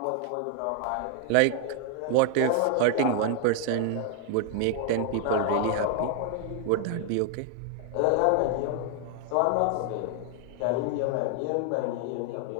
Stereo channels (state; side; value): different; both; correlation 0.00